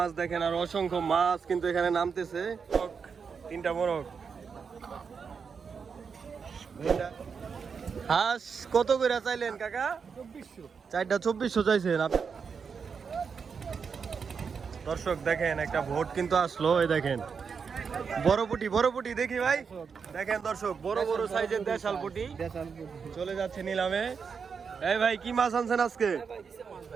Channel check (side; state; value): left; quieter; 6.0 dB